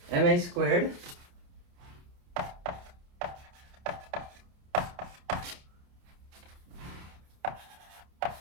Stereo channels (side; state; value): left; late; 29 ms